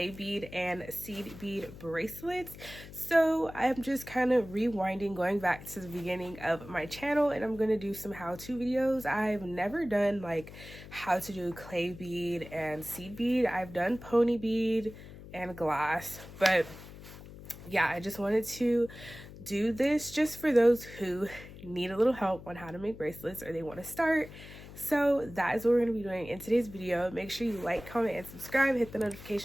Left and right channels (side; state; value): left; noise; hum, 15 dB below the sound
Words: bead and seed bead bracelets. So I'm just kind of rewinding, going back to the beginning of my channel, and I'm going to do some how-to videos. I've never done like how to do clay bead and seed bead. I've done pony bead and glass, but yeah, I just wanted to do this just for those who need a little help on how to make bracelets or they want to start. So that is what we're going to be doing in today's video. Make sure you like, comment, and subscribe. Hit the